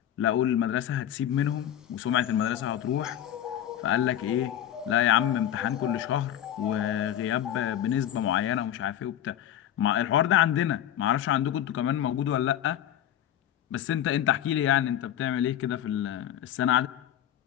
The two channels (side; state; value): right; quieter; 11.2 dB